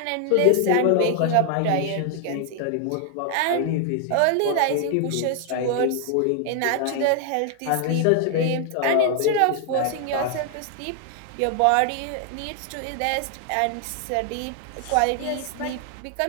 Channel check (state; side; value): different; both; correlation 0.00